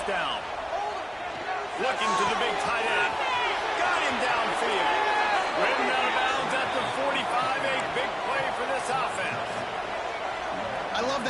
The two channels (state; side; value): identical; both; correlation 1.00